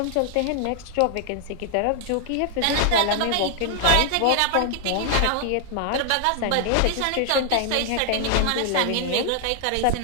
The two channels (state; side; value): different; both; correlation 0.00